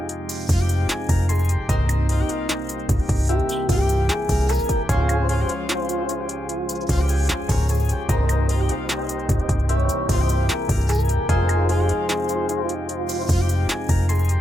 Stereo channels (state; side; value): normal; both; correlation 0.86